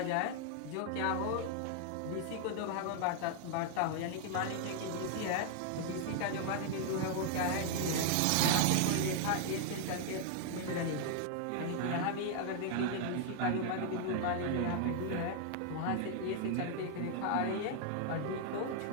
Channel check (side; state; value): both; different; correlation 0.00